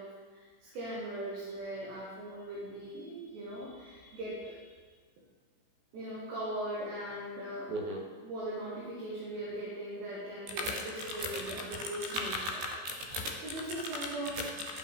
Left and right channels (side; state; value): left; late; 18 ms